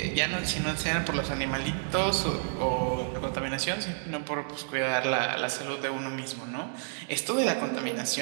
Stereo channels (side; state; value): left; silent; digital silence